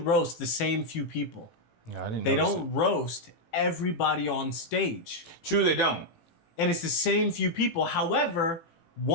the same few people. Yeah, I didn't. They don't roast everybody on stage. True, they don't. And it's the same few people. However,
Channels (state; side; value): late; right; 18 ms